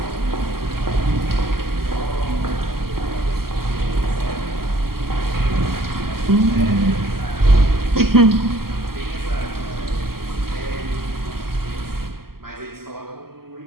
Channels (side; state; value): left; late; 0.93 ms